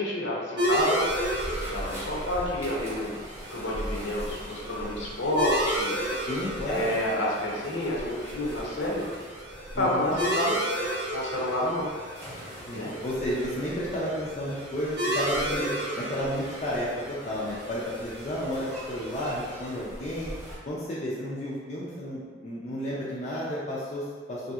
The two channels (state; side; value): normal; both; correlation 0.23